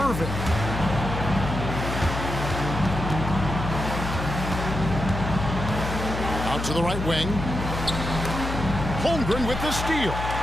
Out to the right wing. Holmgren with the steal.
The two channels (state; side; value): noise; left; hum, 5 dB below the sound